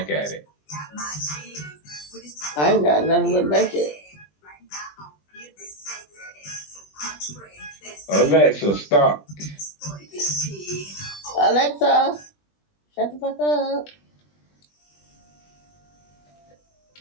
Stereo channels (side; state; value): right; late; 20 ms